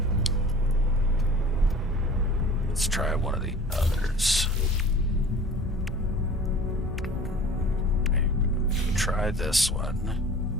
Let's try one of the others. Maybe try this one.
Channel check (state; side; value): normal; both; correlation 0.43